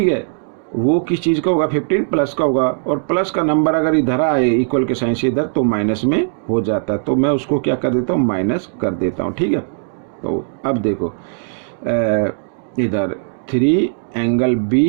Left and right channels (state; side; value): silent; left; digital silence